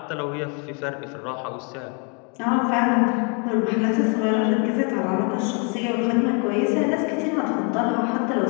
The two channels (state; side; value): quieter; right; 36.3 dB